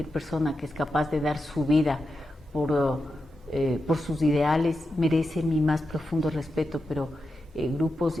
persona que es capaz de dar su vida por sus ideales merece mi más profundo respeto, pero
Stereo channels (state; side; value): normal; both; correlation 0.89